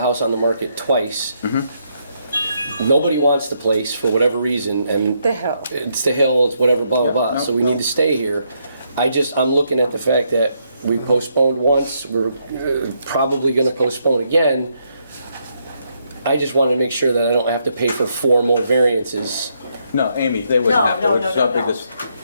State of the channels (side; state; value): both; inverted; correlation -0.76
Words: house on the market twice. Nobody wants the place for whatever reason, and The hill. it's the hill, it's whatever, blah, blah, blah. So we need to stay here. I'm looking at the fact that we postponed once, we're probably going to postpone again. I just want to make sure that I don't have to pay for 4 more variances. No, Amy, they wouldn't have to. No.